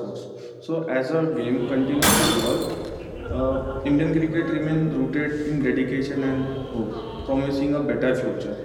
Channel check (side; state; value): both; identical; correlation 1.00